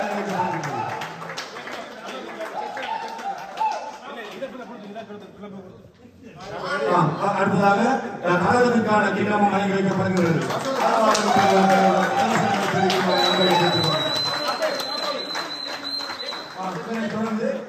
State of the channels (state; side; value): identical; both; correlation 1.00